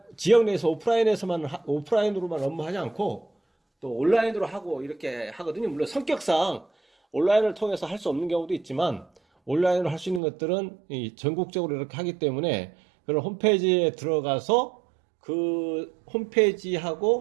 지역 내에서 오프라인으로만 업무하지 않고 또 온라인으로 하고 이렇게 하거든요. 물론 성격상 온라인을 통해서 할 수 없는 경우도 있지만 온라인으로 할 수 있는 것들은 전국적으로 이렇게 하기 때문에 그런 홈페이지에 들어가서 그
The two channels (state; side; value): drops out; left; at 10.2 s